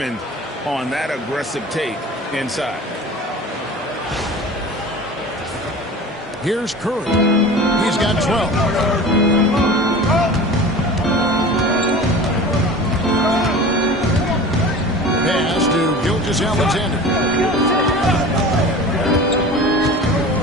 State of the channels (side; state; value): both; normal; correlation 0.37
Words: on that aggressive take inside. Here's Curry. He's got 12. Pass to Gilgeous-Alexander.